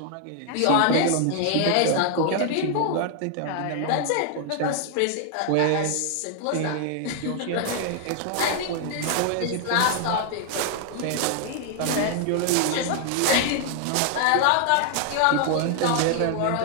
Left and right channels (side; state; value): both; different; correlation 0.00